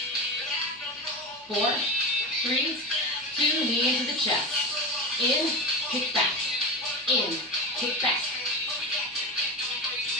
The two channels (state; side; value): normal; both; correlation 0.22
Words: 4, 3, 2, knee into the chest. In, kick back. In, kick back.